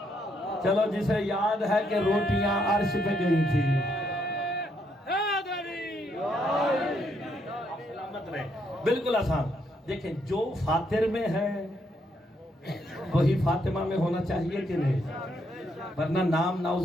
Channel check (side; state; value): both; normal; correlation 0.75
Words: چلو جسے یاد ہے کہ روٹیاں عرش پہ گئی تھی، بالکل آسان۔ دیکھیں جو فاطر میں ہے وہی فاطمہ میں ہونا چاہیے کہ نہیں، ورنہ نام